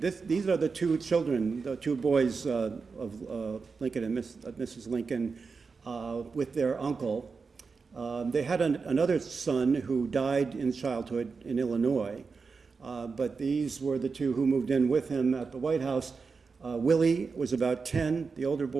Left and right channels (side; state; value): left; quieter; 4.8 dB